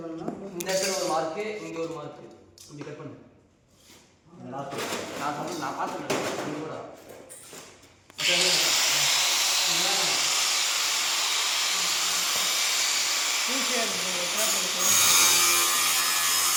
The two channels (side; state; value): both; identical; correlation 1.00